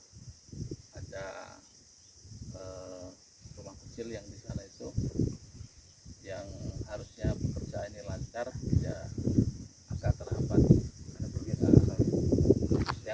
ada rumah kecil yang di sana itu yang harusnya pekerjaan ini lancar ya agak terhambat karena pergeseran.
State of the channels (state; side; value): identical; both; correlation 1.00